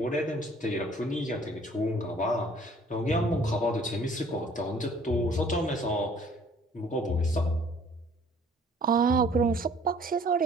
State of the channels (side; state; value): both; normal; correlation 0.56